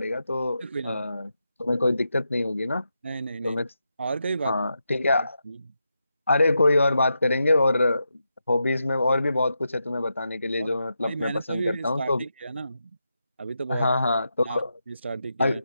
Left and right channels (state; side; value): inverted; both; correlation -0.86